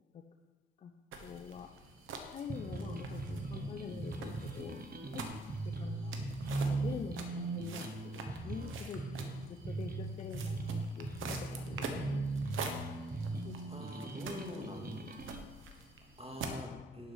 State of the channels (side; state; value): both; normal; correlation 0.66